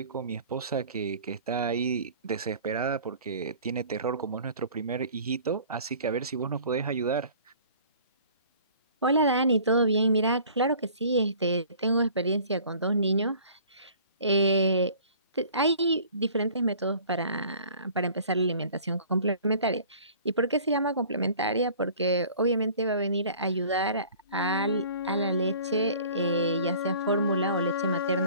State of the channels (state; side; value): inverted; both; correlation -0.49